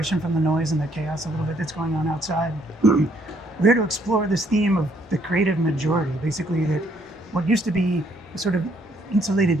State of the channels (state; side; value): normal; both; correlation 0.67